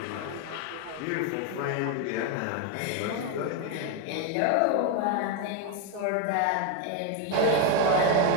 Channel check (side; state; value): both; different; correlation 0.01